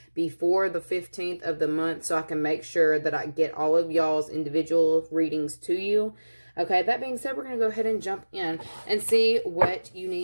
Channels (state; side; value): inverted; both; correlation -1.00